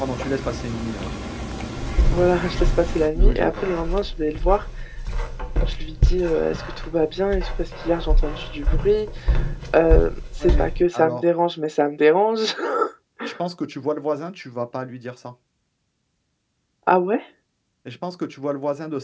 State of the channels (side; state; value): both; identical; correlation 1.00